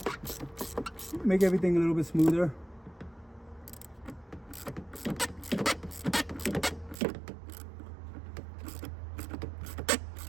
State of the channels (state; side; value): drops out; left; at 7.0 s